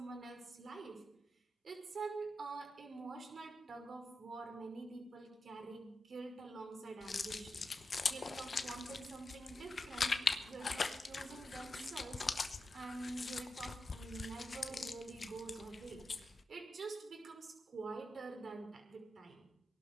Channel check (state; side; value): normal; both; correlation 0.90